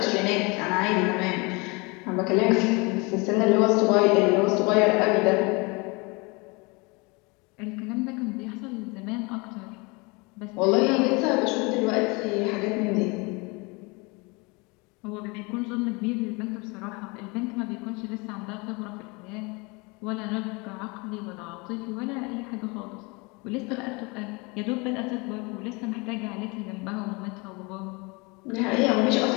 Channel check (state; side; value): quieter; right; 27.8 dB